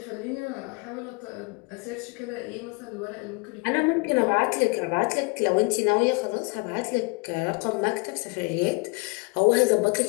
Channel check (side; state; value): right; quieter; 30.7 dB